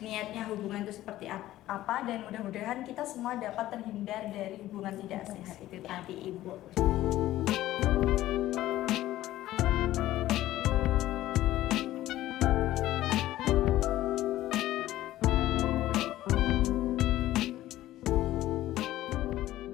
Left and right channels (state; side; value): quieter; right; 14.8 dB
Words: niatnya hubungan itu seperti apa, dan mudah-mudahan kita semua dapat terhindar dari hubungan tidak sehat itu tadi Ibu.